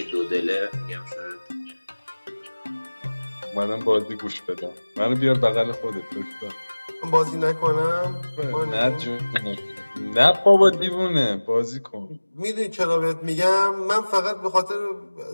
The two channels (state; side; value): inverted; both; correlation -1.00